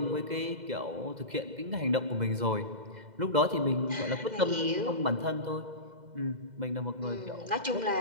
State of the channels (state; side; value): late; left; 2.0 ms